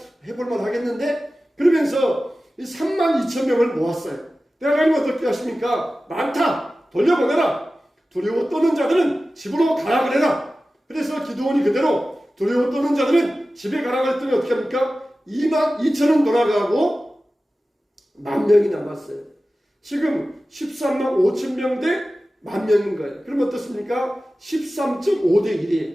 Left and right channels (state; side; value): normal; both; correlation 0.95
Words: 해볼만 하겠는데? 그러면서 이 3만 2천 명을 모았어요. 하나님은 어떻게 하십니까? 많다! 돌려보내라! 두려워 떠는 자들은 집으로 가라 그래라! 그래서 기드온이 그대로 두려워 떠는 자들은 집에 가라 그랬더니 어떻게 합니까? 2만 2천은 돌아가고 10,000명이 남았어요. 지금 13만 5천 명 대 10,000명인 거예요. 그럼 어떻습니까? 13.5대